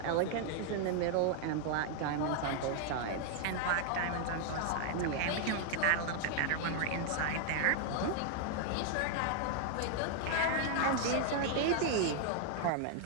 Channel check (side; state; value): both; different; correlation 0.00